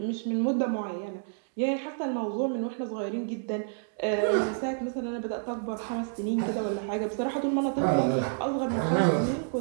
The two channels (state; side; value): silent; left; digital silence